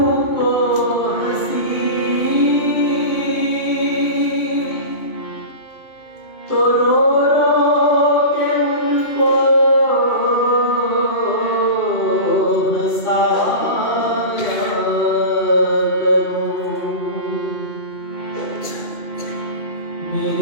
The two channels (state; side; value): late; right; 2.5 ms